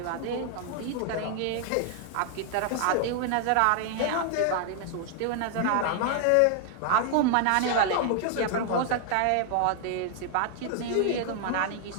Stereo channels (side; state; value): both; different; correlation 0.00